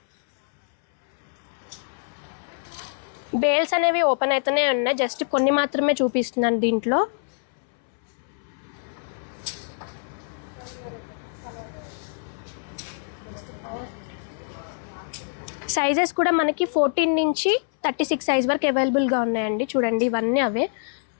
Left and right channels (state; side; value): silent; right; 61 dB below the other